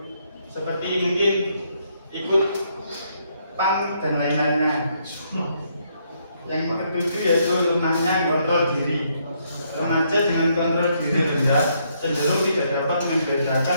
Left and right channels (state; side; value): inverted; both; correlation -0.73